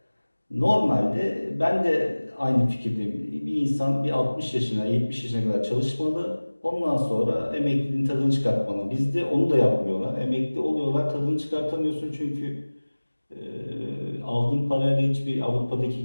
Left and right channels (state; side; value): inverted; both; correlation -1.00